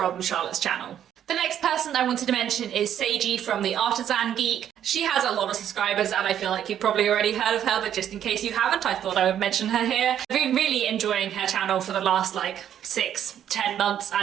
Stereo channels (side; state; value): left; quieter; 10.1 dB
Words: Charlotte's channel. The next person I wanted to mention is Seiji from the Artisan Geek. She has a lot of subscribers and I feel like you've probably already heard of her, but just in case you haven't, I thought I would mention her here. I've been really enjoying her channel for the last like 6-10 months,